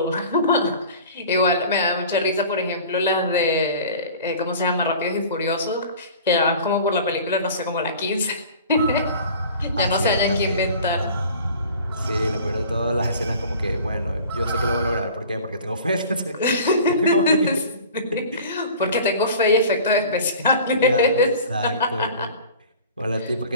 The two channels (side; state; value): both; inverted; correlation -0.43